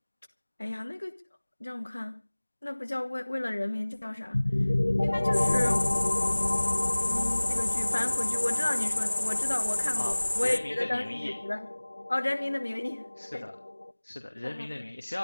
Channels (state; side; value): inverted; both; correlation -1.00